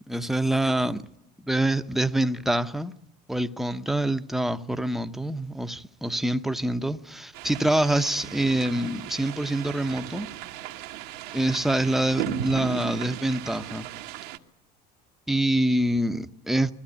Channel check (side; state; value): both; normal; correlation 0.89